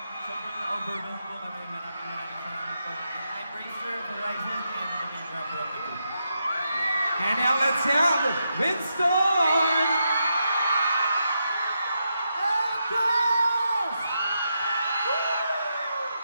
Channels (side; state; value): both; inverted; correlation -0.83